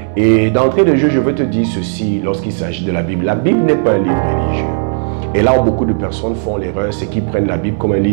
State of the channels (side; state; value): left; silent; digital silence